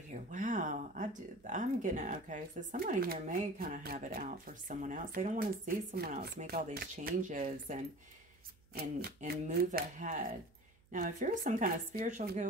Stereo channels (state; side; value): noise; right; hum, 30 dB below the sound